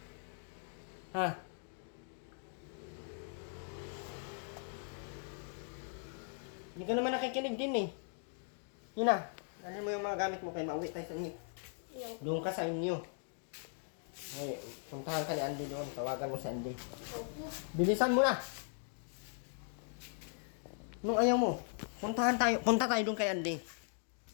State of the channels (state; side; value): silent; right; 52 dB below the other